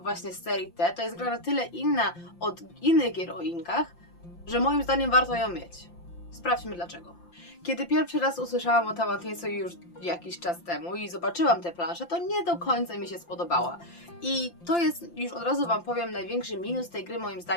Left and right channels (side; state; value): right; late; 5.8 ms